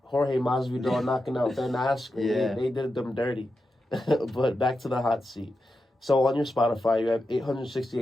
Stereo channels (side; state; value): both; normal; correlation 0.89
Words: Jorge Masvidal knocking out Ben Askren. Yeah. They did them dirty. But back to the hot seat. So on your Spotify, you have